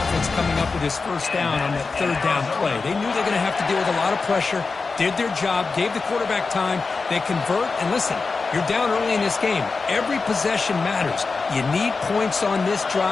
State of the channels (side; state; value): right; quieter; 4.3 dB